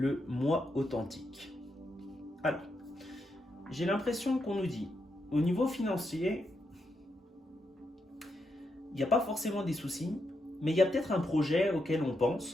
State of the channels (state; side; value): normal; both; correlation 0.82